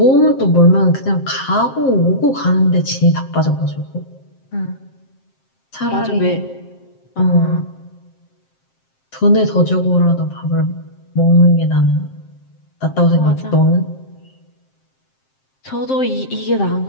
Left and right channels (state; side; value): late; right; 7.6 ms